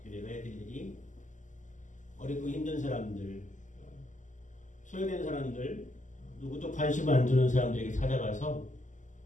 교회가 해야 될 일이 어렵고 힘든 사람들, 소외된 사람들, 누구도 관심 안 주는 사람들에게 찾아가서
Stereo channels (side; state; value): right; late; 0.37 ms